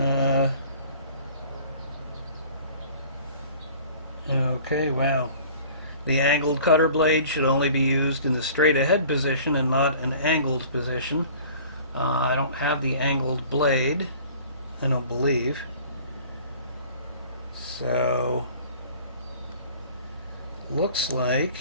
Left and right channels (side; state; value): both; inverted; correlation -0.48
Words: Okay, wow. The angled cutter blade should only be used in the straight ahead position and not an angled position. I don't have the angled blade, I don't believe. So, looks like,